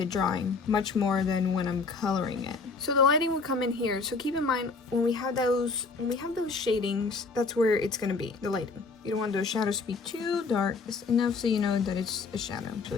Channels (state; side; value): quieter; right; 4.3 dB